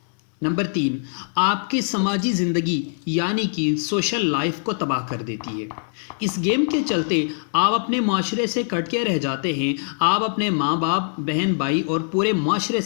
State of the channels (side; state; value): right; silent; digital silence